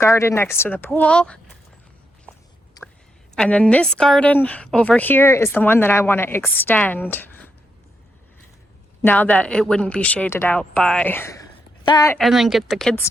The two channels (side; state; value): both; normal; correlation 0.81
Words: next to the pool. And then this garden over here is the one that I want to extend, now that it wouldn't be shaded out by that, and then get the kids'